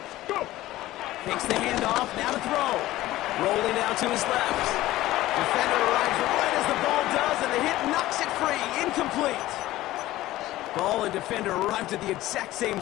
Go. Takes the handoff, now to throw. Rolling out to his left. Defender arrives right as the ball does, and the hit knocks it free. Incomplete. Ball and defender arrived at the exact same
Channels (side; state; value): right; quieter; 16.1 dB